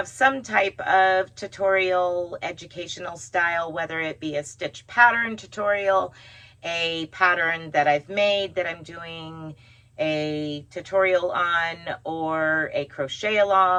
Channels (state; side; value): identical; both; correlation 1.00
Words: some type of tutorial, educational style, whether it be a stitch pattern tutorial, a pattern that I've made that I'm doing a tutorial on, or a crochet